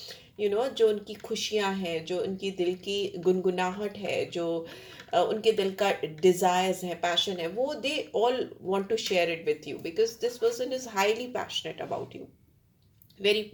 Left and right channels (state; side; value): identical; both; correlation 1.00